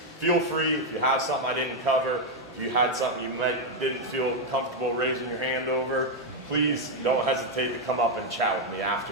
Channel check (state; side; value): normal; both; correlation 0.02